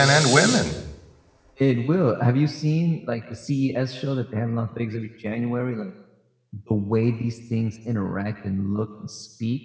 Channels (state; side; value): identical; both; correlation 1.00